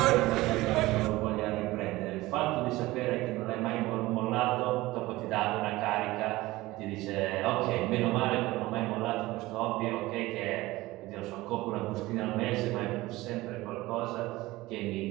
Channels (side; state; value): left; quieter; 19.0 dB